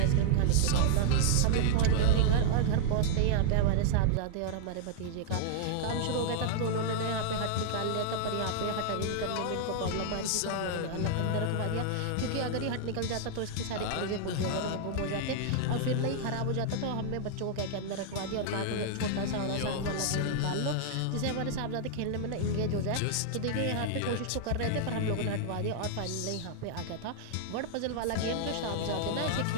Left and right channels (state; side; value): different; both; correlation -0.01